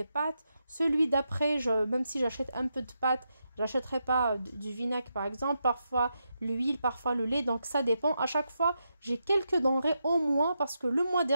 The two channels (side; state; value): both; inverted; correlation -0.85